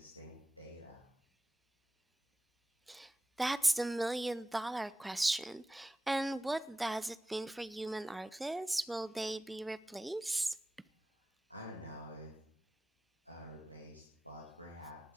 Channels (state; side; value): normal; both; correlation 0.95